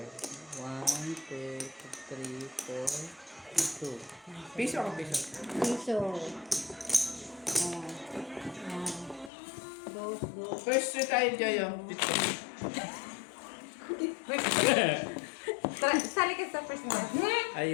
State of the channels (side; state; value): right; drops out; at 9.3 s